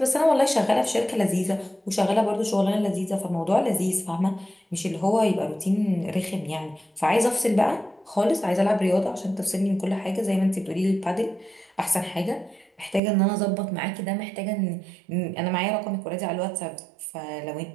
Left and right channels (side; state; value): left; drops out; at 13.0 s